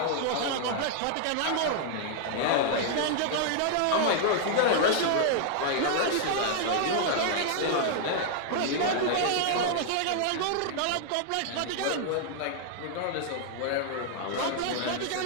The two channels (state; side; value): different; both; correlation 0.00